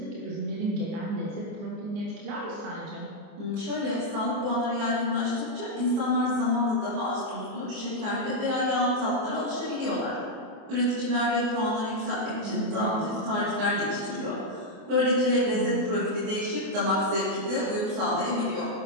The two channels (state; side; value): late; left; 24 ms